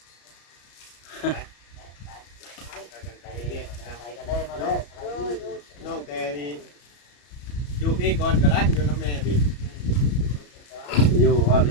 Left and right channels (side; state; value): right; late; 34 ms